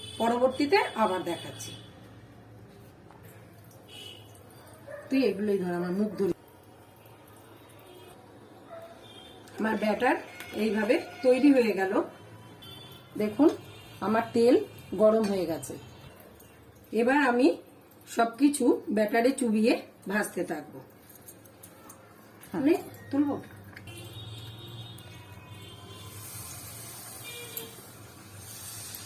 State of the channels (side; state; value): both; identical; correlation 1.00